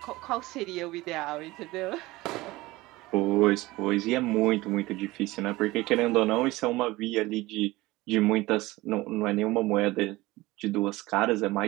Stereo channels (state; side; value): quieter; left; 19.8 dB